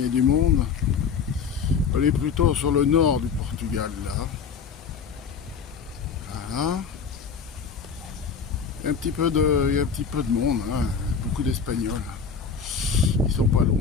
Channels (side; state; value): right; quieter; 6.0 dB